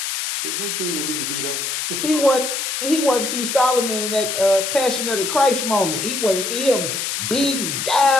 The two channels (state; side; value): noise; left; hiss, 2 dB below the sound